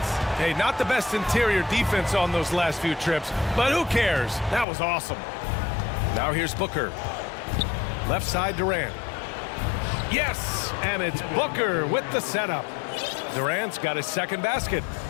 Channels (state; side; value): drops out; right; at 4.7 s